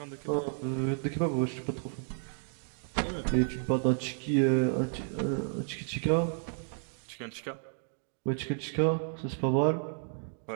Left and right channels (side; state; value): left; silent; 56 dB below the other